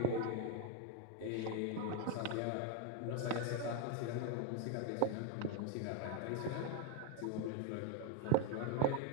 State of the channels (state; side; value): different; both; correlation 0.01